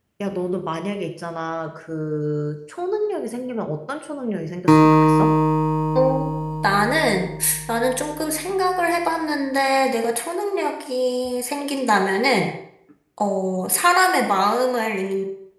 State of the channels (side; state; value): both; identical; correlation 1.00